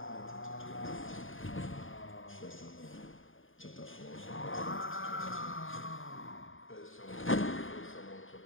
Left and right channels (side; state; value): right; late; 0.59 ms